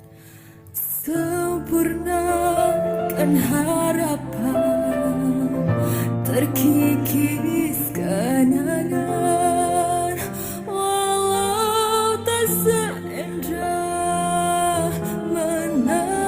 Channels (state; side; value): identical; both; correlation 1.00